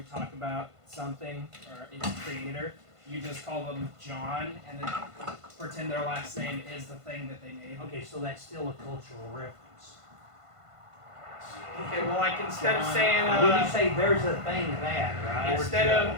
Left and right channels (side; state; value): left; late; 1.5 ms